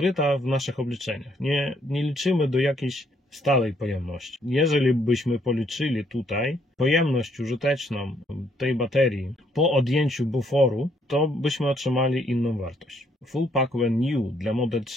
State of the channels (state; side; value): normal; both; correlation 0.69